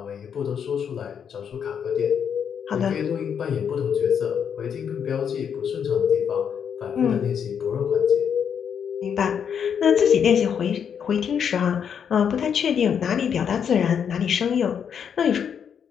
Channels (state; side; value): quieter; right; 7.7 dB